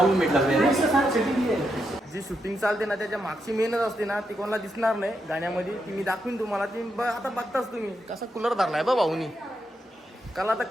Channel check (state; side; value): normal; both; correlation 0.83